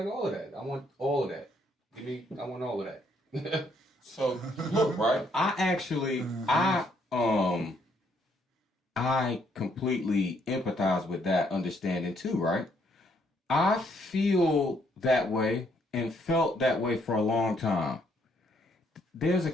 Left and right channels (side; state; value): both; normal; correlation 0.70